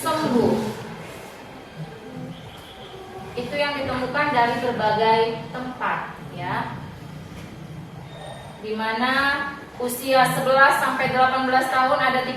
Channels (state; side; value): identical; both; correlation 1.00